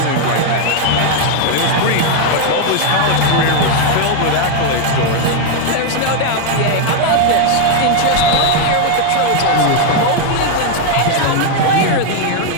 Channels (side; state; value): both; different; correlation 0.00